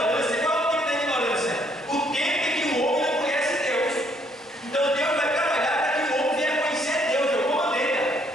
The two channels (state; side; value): normal; both; correlation 0.67